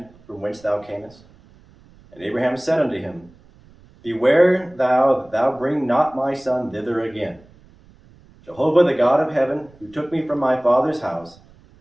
from whence thou camest? And Abraham said unto him, Beware thou that thou bring not my son thither again. Jehovah the God of heaven, who took me from my father's house,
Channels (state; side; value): noise; right; rumble, 27 dB below the sound